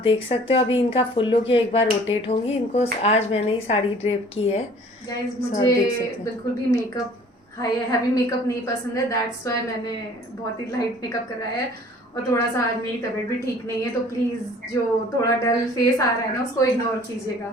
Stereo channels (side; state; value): both; normal; correlation 0.52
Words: देख सकते हो अभी इनका फुल लुक ये एक बार रोटेट होंगी। इनको आज मैंने ही साड़ी ड्रेप की है। गाइस मुझे बिल्कुल भी मेकअप हैवी मेकअप नहीं पसंद है, दैट्स वाई मैंने बहुत ही लाइट मेकअप कराया है। और थोड़ा सा आज मेरी तबीयत भी ठीक नहीं है तो प्लीज जो थोड़ा डल फेस आ रहा है ना उसको इग्नोर